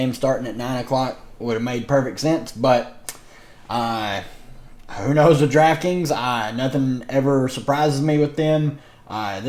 starting at 9 o'clock. Would have made perfect sense, but who knows with Draftkings? Nothing ever surprises me with them.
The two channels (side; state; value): both; identical; correlation 1.00